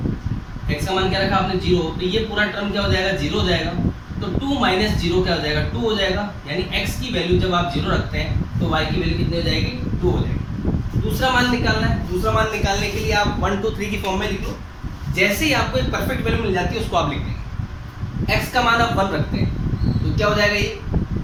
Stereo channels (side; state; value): both; identical; correlation 1.00